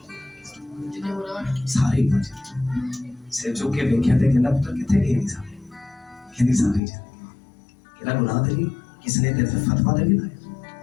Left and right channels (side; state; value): right; drops out; at 6.8 s